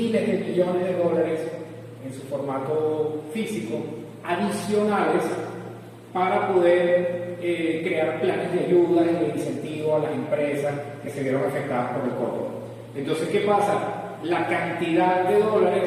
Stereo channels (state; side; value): identical; both; correlation 1.00